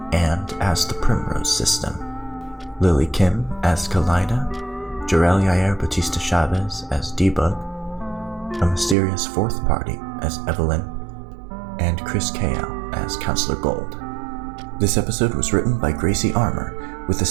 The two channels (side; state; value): left; drops out; at 9.0 s